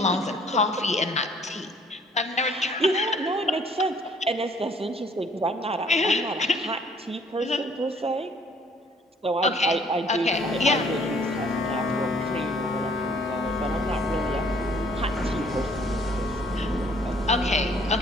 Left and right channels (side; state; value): both; normal; correlation 0.59